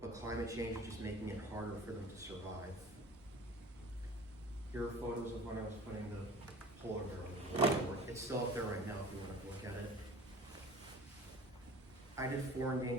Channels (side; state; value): both; normal; correlation 0.43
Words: climate change is just making it harder for them to survive. Here are photos of when I was putting the polar bear on the board. It's still up there right now if you want to look at it. I did 4